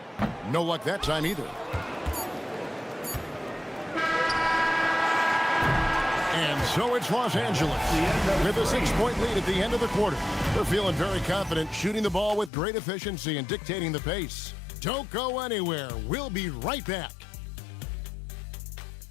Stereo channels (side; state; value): right; drops out; at 12.5 s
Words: No luck that time either. And so it's Los Angeles with a 6-point lead at the end of the quarter. They're feeling very confident, shooting the ball with great efficiency and dictating the pace. Don't go anywhere. We'll be right back.